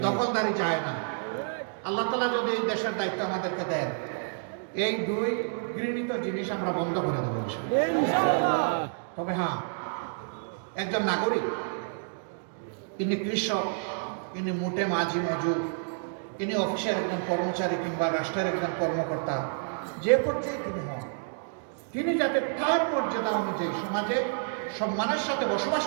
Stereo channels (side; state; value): left; silent; digital silence